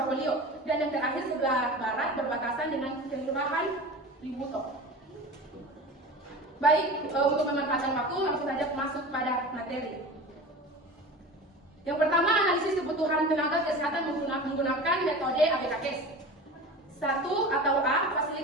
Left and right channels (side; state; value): both; normal; correlation 0.34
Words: dan yang terakhir sebelah barat berbatasan dengan Kelurahan Libuto. Baik, untuk memanfaatkan waktu langsung saja masuk pada materi. Yang pertama, analisis kebutuhan tenaga kesehatan menggunakan metode ABKKes. 1 atau A,